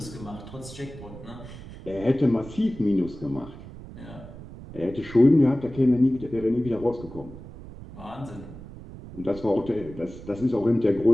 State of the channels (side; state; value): right; noise; rumble, 15 dB below the sound